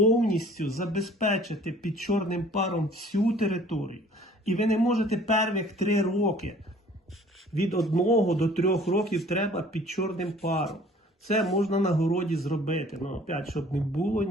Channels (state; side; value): normal; both; correlation 0.52